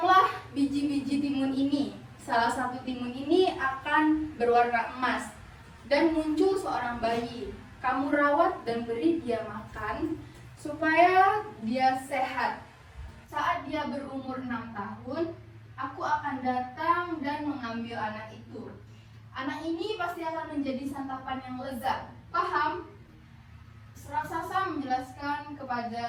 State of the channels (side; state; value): both; identical; correlation 1.00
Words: biji-biji timun ini. Salah satu timun ini akan berwarna emas dan muncul seorang bayi. Kamu rawat dan beri dia makan supaya dia sehat. Saat dia berumur 6 tahun, aku akan datang dan mengambil anak itu. Anak ini pasti akan menjadi santapan yang lezat. Paham? Raksasa menjelaskan kepada